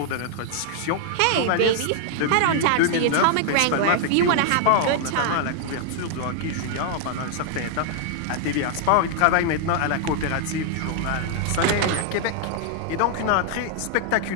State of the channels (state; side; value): different; both; correlation -0.01